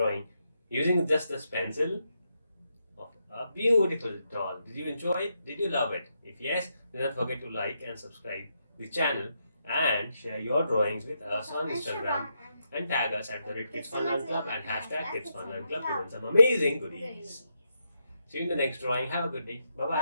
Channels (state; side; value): inverted; both; correlation -0.82